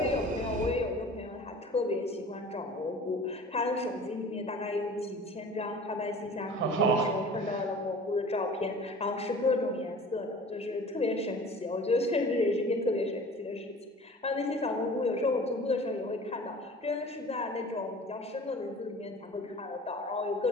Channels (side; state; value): both; normal; correlation 0.43